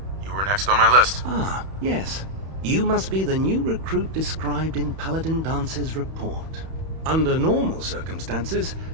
you were next on my list. Ah, yes. You must be the new recruit described in Paladin Dance's report. Under normal circumstances,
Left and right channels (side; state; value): left; late; 31 ms